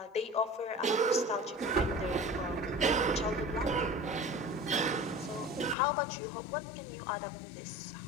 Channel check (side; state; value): right; drops out; at 5.8 s